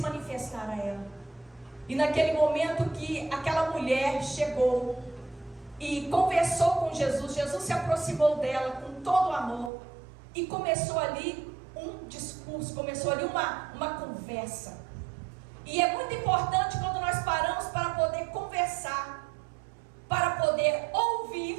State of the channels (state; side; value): drops out; left; at 9.7 s